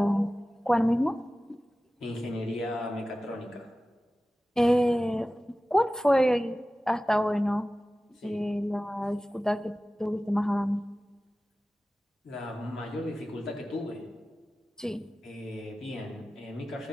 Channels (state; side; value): normal; both; correlation 0.96